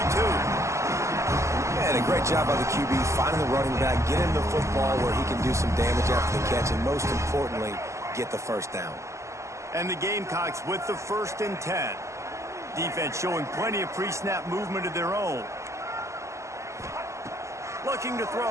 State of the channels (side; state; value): left; late; 0.14 ms